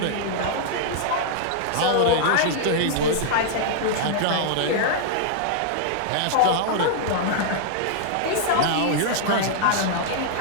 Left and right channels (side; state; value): both; different; correlation -0.01